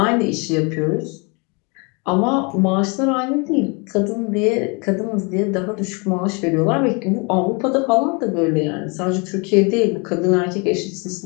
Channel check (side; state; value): right; quieter; 31.8 dB